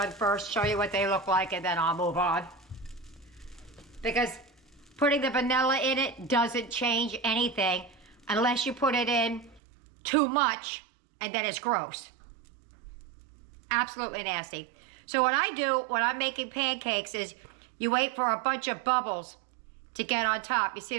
first, show you what they look like, and then I'll move on. Because putting the vanilla in it doesn't change anything. unless you put it in too much, and then it's gross. Absolutely nasty. So what I do when I'm making pancakes is you wait for a bunch of bubbles to get on top. You see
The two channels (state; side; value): drops out; left; at 9.6 s